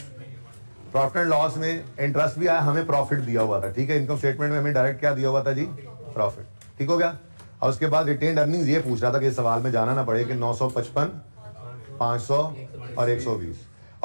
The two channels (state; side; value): inverted; both; correlation -1.00